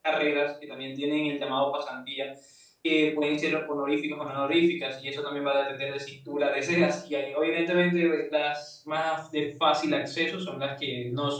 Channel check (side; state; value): both; identical; correlation 1.00